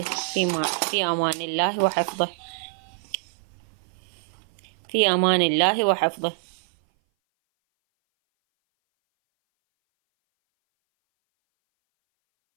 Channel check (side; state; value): left; silent; 58 dB below the other